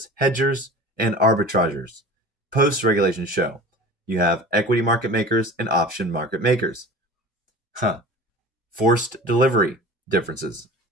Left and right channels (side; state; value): both; normal; correlation 0.38